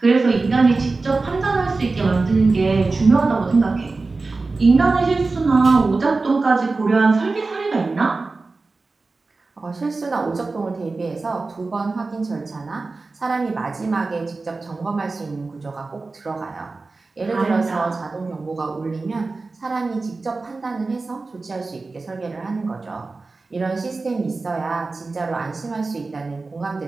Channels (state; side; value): quieter; left; 3.7 dB